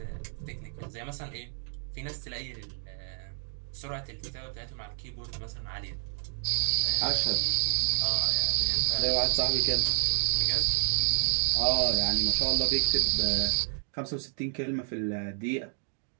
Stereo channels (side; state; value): left; silent; 58 dB below the other